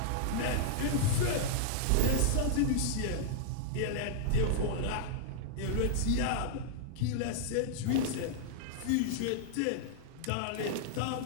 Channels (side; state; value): both; different; correlation -0.01